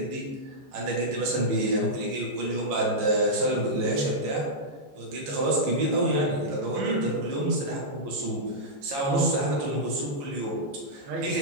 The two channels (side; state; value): left; late; 15 ms